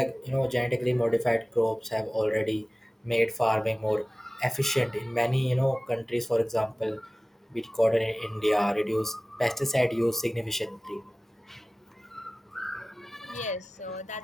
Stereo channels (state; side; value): normal; both; correlation 0.97